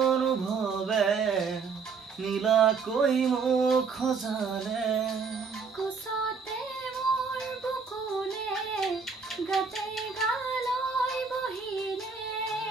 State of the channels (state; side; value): quieter; left; 5.3 dB